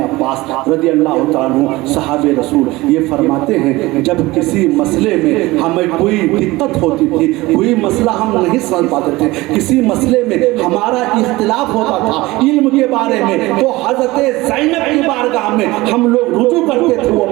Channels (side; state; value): left; quieter; 20.1 dB